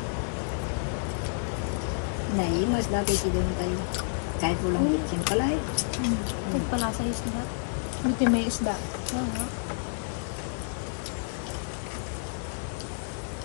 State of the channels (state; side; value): silent; right; 58 dB below the other